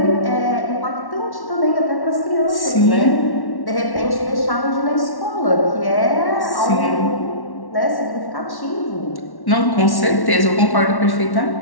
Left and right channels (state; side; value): late; right; 1.1 ms